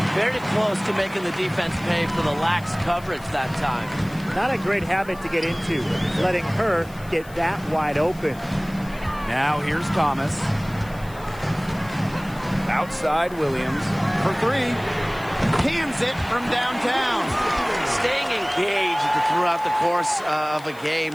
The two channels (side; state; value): left; noise; hiss, 22 dB below the sound